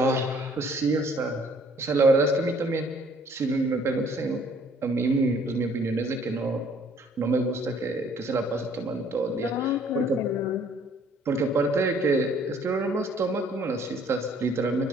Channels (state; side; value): normal; both; correlation 0.59